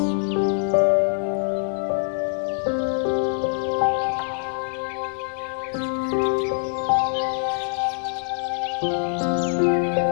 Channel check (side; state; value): right; silent; digital silence